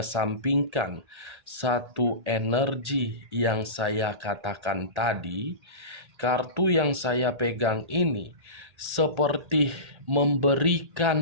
satu energi yang saya katakan tadi, kartu yang saya pegang ini seperti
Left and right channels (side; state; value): left; late; 1.4 ms